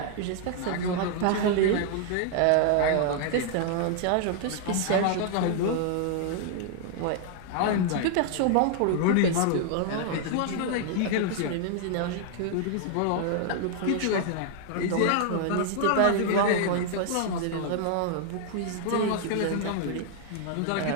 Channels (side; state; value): both; different; correlation 0.00